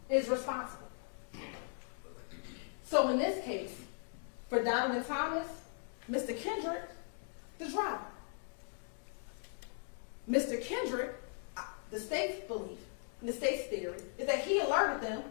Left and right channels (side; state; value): right; silent; 52 dB below the other